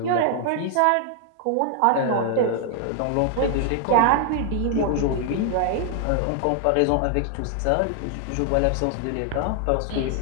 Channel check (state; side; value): different; both; correlation 0.00